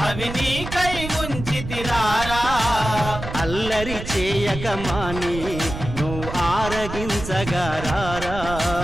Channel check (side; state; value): right; noise; rumble, 8 dB below the sound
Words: అవి నీకై ఉంచితిరారా అల్లరి చేయకమాని నువ్వు ఆరగించగారారా